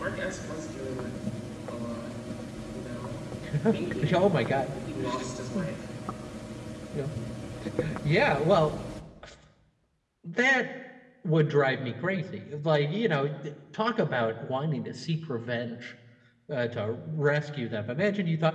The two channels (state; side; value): identical; both; correlation 1.00